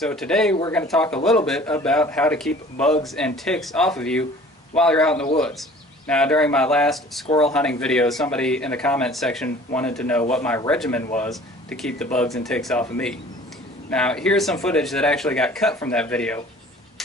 today we're going to talk a little bit about how to keep bugs and ticks off of you while you're out in the woods. Now, during my last squirrel hunting video, somebody in the comment section wanted to know what my regimen was to keep the bugs and ticks off of me. Now, here's some footage that actually got cut from that video.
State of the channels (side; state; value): both; normal; correlation 0.48